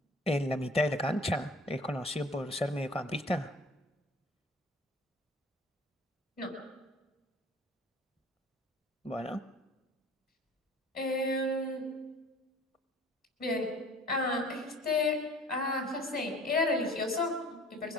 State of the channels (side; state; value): both; normal; correlation 0.48